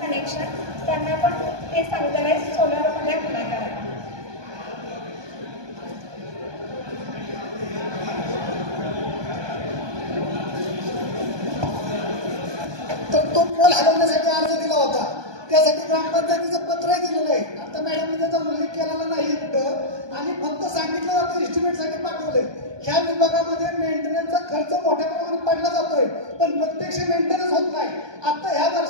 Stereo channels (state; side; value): late; left; 1.2 ms